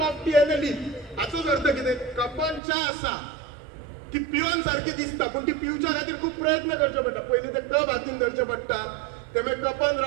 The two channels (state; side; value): drops out; left; at 2.6 s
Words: of T end a leaf. हाचोच अर्थ कितें, कपान च्या आसा ती पिवन सारखी दिसता, पण ती पिवच्या खातीर खूप प्रयत्न करचे पडटा. पयलीं ते कप हातीन धरचे पडटा, ते मागीर कपान